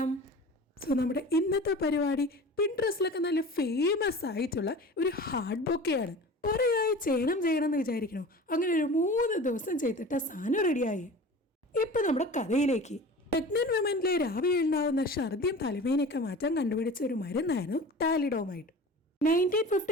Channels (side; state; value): both; normal; correlation 0.38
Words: സോ നമ്മുടെ ഇന്നത്തെ പരിപാടി പിൻട്രസ്റ്റിലൊക്കെ നല്ല ഫേമസ് ആയിട്ടുള്ള ഒരു ഹാർഡ് ബൊക്കെയാണ്. ഒരേയായി ചെയ്യണം എന്ന് വിചാരിക്കണോ? അങ്ങനെ ഒരു 3 ദിവസം ചെയ്തിട്ട് സാധനം റെഡിയായി. ഇപ്പം നമ്മുടെ കഥയിലേക്ക്. പ്രഗ്നന്റ് വിമനിലെ രാവിലെ ഉണ്ടാകുന്ന ഛർദിയും തലവേനയൊക്കെ മാറ്റാൻ കണ്ടുപിടിച്ച ഒരു മരുന്നായിരുന്നു താലിഡോമൈഡ്.